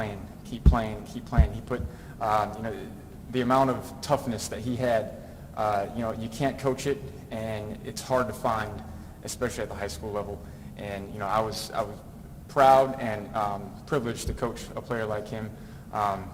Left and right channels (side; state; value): both; identical; correlation 1.00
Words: keep playing, keep playing. He put, the amount of toughness that he had, you can't coach it, and it's hard to find, especially at the high school level. And, I was proud and privileged to coach a player like him.